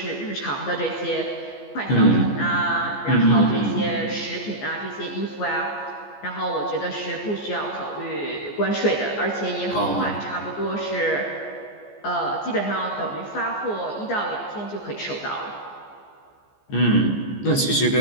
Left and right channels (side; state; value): right; late; 14 ms